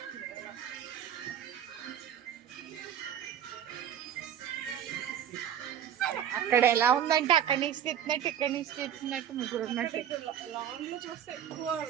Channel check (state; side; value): quieter; left; 9.7 dB